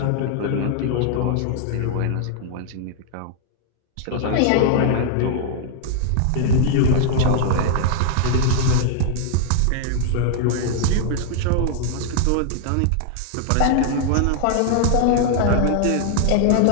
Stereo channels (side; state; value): both; different; correlation -0.01